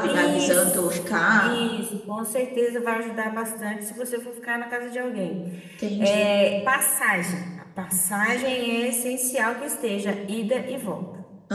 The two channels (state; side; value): identical; both; correlation 1.00